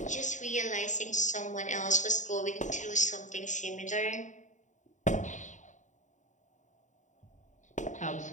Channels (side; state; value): right; late; 0.36 ms